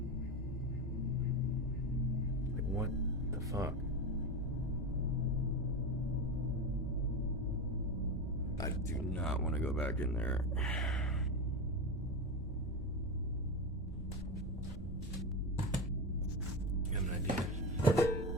Like, what the fuck? I do not want to go back in there. You have an idea?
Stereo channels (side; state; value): both; normal; correlation 0.18